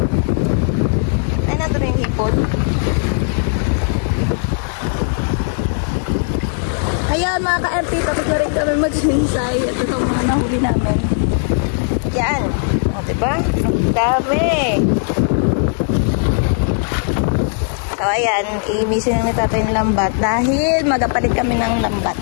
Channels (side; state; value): right; silent; 55 dB below the other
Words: Ay, nato rin yung hipon. Ayan, mga ka-MP, tapos na rin kami mag-sinisay. Ito itong mga nahuli namin. Yan. O, diba? Dami. ayan, imisin na ni tatay ng lambat dahil magapalit kami ng lambat.